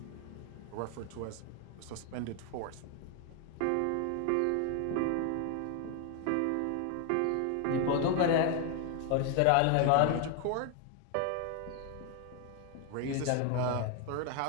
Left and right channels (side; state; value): both; different; correlation 0.00